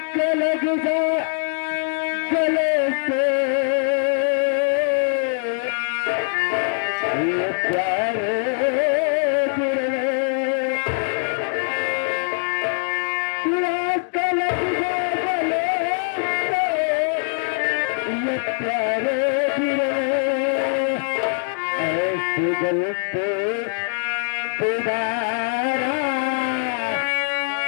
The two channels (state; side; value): silent; right; 64 dB below the other